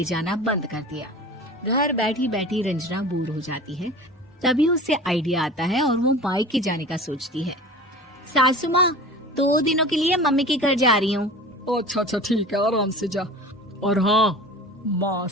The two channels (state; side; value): normal; both; correlation 0.38